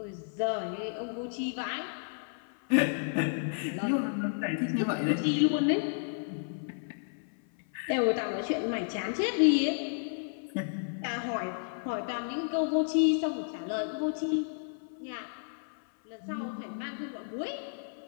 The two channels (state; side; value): silent; right; 56 dB below the other